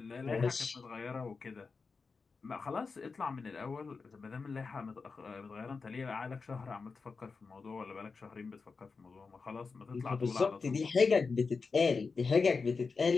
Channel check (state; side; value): quieter; right; 4.6 dB